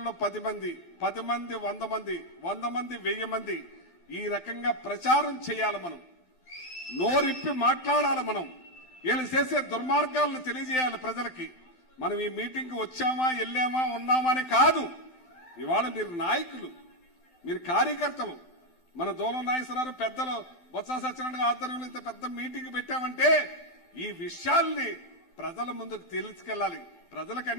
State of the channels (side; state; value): right; late; 12 ms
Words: 10 మంది, 10 మంది 100 మంది, 100 మంది 1000 మంది ఈ రకంగా ప్రచారం చేయాలి. మనం నోరిప్పి మాట్లాడాలి. మనం వీళ్ళు చేసే దుర్మార్గాలను తెలియజేయాలి ప్రజలకి. మనం ఈ మీటింగ్కి వచ్చామా, వెళ్ళామా, ఉన్నామా అని కాదు. ఇవాళ మీరు నాయకులు, మీరు కార్యకర్తలు. మన దూలం నాగేశ్వరరావు పెద్దలు బొత్స సత్యనారాయణ ఆధ్వర్యంలో ఇంత పెద్ద మీటింగ్ పెట్టామంటే ఈ విషయాల్ని ప్రజల ముందుకు తీసుకెళ్ళాలి. ప్రజలకు